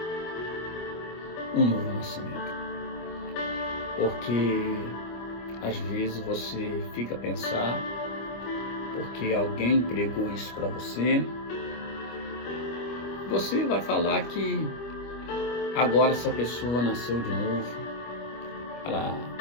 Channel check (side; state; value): right; late; 25 ms